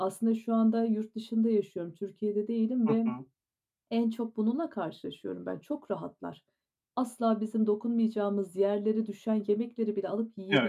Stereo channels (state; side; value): identical; both; correlation 1.00